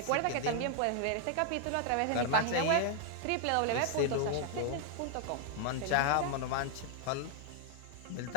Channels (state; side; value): different; both; correlation 0.00